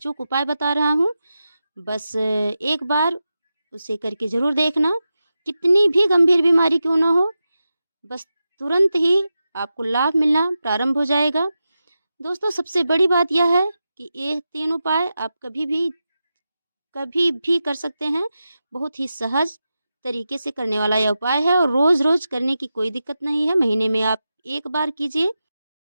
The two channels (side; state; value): both; inverted; correlation -0.91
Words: उपाय बता रहा हूँ, बस एक बार उसे करके ज़रूर देखना। कितनी भी गंभीर बीमारी क्यों ना हो, बस तुरंत ही आपको लाभ मिलना प्रारंभ हो जाएगा। दोस्तों, सबसे बड़ी बात यह है कि ये 3 उपाय आप कभी भी कर सकते हैं। बहुत ही सहज तरीके से करने वाला यह उपाय है और रोज़ रोज़ करने की कोई दिक्कत नहीं है। महीने में आप एक बार कीजिए।